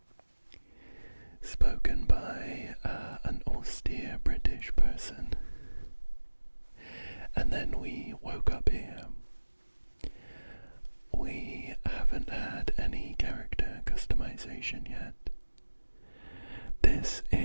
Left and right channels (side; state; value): both; inverted; correlation -1.00